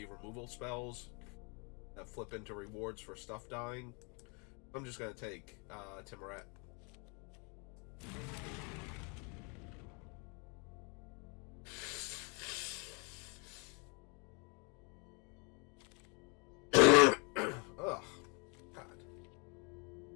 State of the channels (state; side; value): quieter; right; 33.8 dB